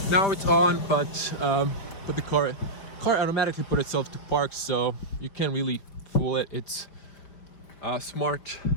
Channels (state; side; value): late; right; 5.1 ms